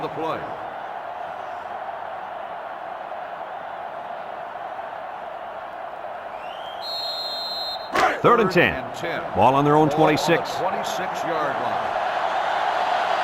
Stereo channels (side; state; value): both; identical; correlation 1.00